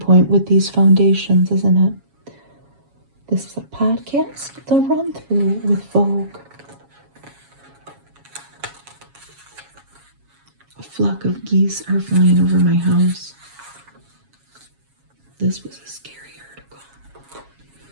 with these foundations, isn't it? This is a podcast, The Run Through with Vogue. A flock of geese are flying over my house. This was a scary article.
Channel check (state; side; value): late; left; 7.2 ms